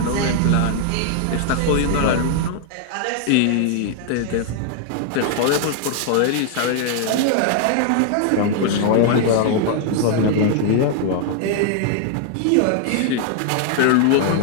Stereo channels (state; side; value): different; both; correlation 0.00